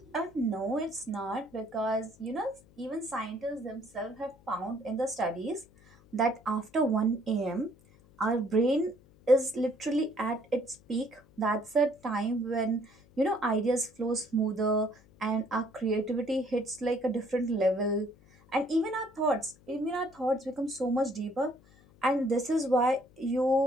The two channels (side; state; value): left; noise; hum, 27 dB below the sound